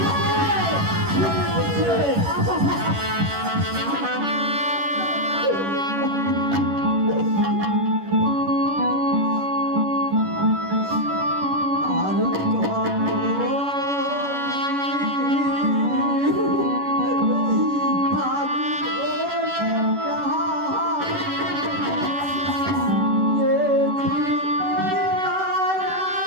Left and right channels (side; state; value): left; late; 11 ms